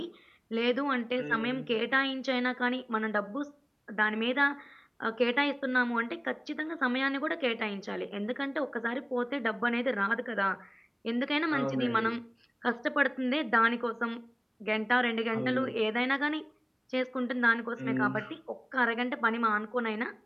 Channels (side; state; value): both; identical; correlation 1.00